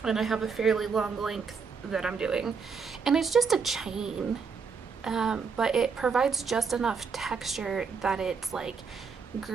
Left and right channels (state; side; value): quieter; left; 5.5 dB